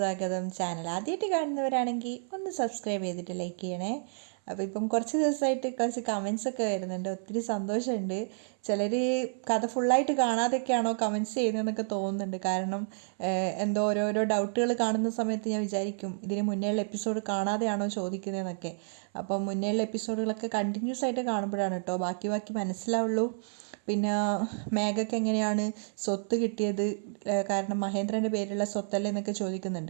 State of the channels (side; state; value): left; silent; 58 dB below the other